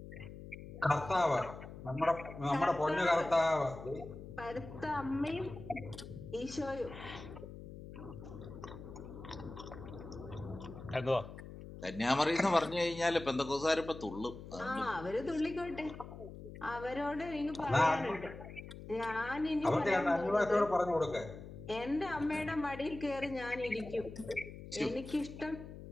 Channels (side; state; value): left; noise; hum, 13 dB below the sound